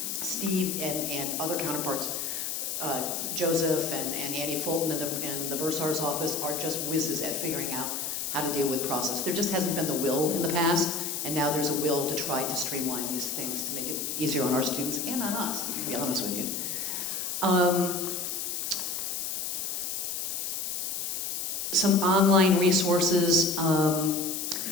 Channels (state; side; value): noise; left; hiss, 3 dB below the sound